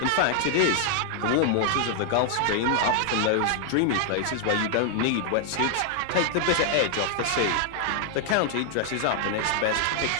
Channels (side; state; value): both; different; correlation 0.00